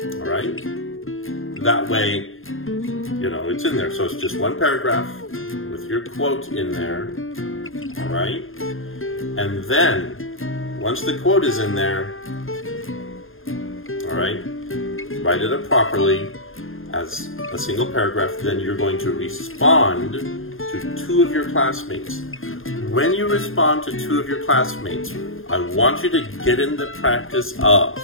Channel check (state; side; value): late; right; 0.60 ms